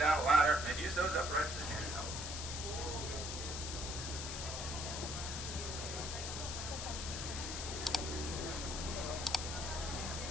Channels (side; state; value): left; noise; hiss, 5 dB below the sound